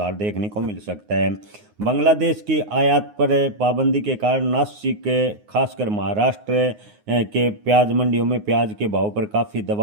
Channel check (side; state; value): left; late; 9.6 ms